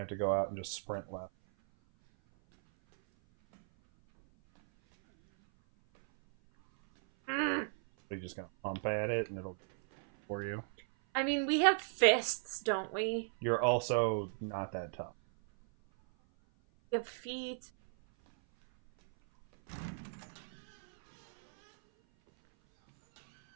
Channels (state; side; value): silent; left; 54 dB below the other